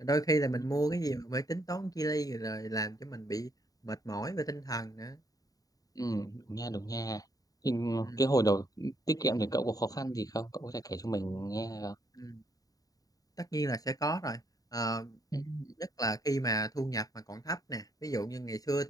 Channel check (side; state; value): right; late; 0.18 ms